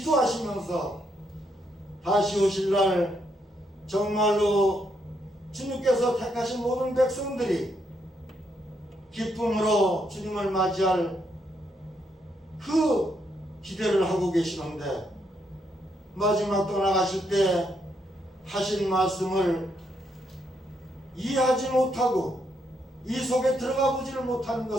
다시 오실 날 정말로 주님께서 택하신 모든 백성들이 기쁨으로 주님을 맞이할 그 기대를 하고 계시는데 마지막 떠나가실 때 하신 말씀을 이해하지 못하고 이 속에 들어가 보지를 못하는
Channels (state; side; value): normal; both; correlation 0.77